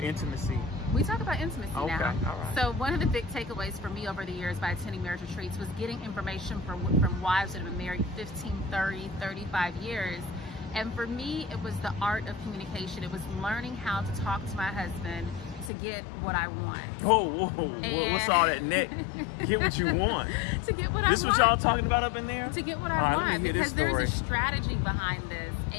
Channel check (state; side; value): drops out; right; at 15.7 s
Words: intimacy? We talk about intimacy now. All right. So one of the big takeaways for me over the years by attending marriage retreats was getting information from wives that have been married 15, 30, 35 years. And for me, it was the art of communication. It was learning how to talk to my husband to get what I want. Whoa. What's all that neck? Get what you want. To get what I want. This what y'all talking about up in there? To get what I want. Because there's a strategy behind this.